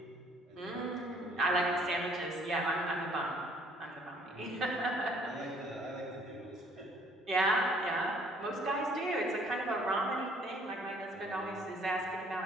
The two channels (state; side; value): normal; both; correlation 0.60